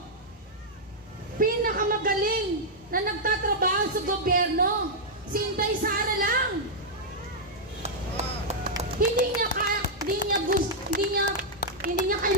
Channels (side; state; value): both; normal; correlation -0.06